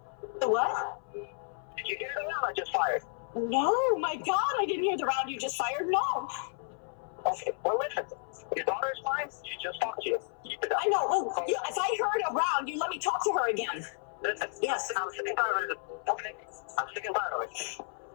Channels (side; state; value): right; silent; 56 dB below the other